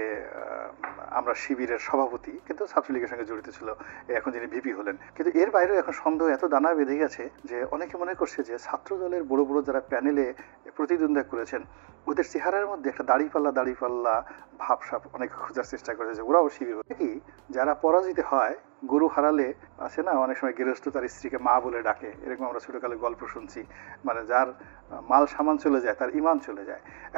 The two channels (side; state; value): left; silent; digital silence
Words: আমরা শিবিরের সভাপতি, কিন্তু ছাত্রলীগের সঙ্গে জড়িত ছিল, এখন যিনি ভিপি হলেন। কিন্তু এর বাইরেও এখন সন্দেহ এত দানা বেঁধে গেছে যে অনেকে মনে করছে যে ছাত্র দলের বড় বড় যারা প্যানেলে প্রতিদ্বন্দ্বিতা করেছেন ওদের চেহারার মধ্যে একটা দাড়িপাল্লা ভাবসাব অনেকে খোঁজার চেষ্টা করেছে, ওরাও শিবির কি যারা পরাজিত হয়, গরু হারালে আছে না অনেক সময় গৃহস্থ তার স্ত্রীকে মা বলে ডাকে, এরকম আমরা ছোটকালে গল্প শুনছি। মানে যার মাল সামান চলে যায় তার ইমান চলে যায়।